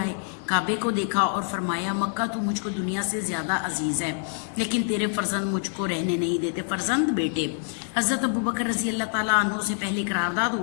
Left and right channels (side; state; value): right; silent; 57 dB below the other